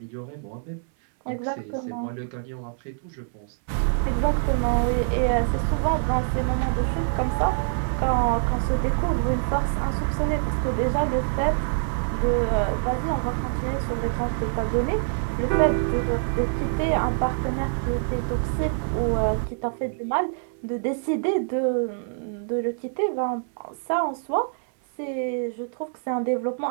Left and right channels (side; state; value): left; silent; 62 dB below the other